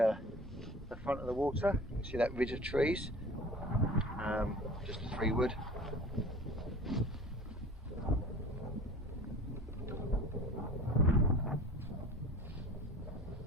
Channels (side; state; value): both; normal; correlation 0.42